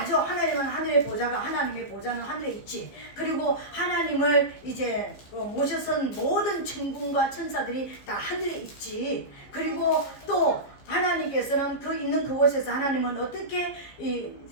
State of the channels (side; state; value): right; late; 15 ms